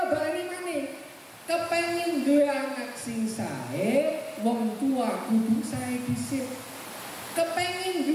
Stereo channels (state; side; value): identical; both; correlation 1.00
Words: baleni maneh, kepengin duwe anak sing sae, wong tua kudu sae dhisik. Kepengin